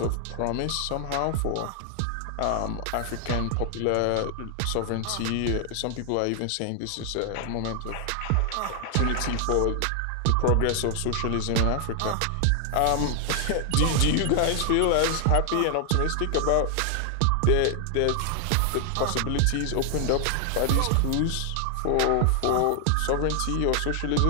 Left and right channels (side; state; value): both; different; correlation 0.00